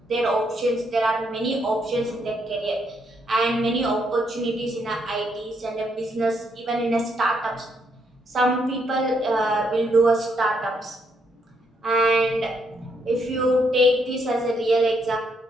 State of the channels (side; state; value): both; normal; correlation 0.75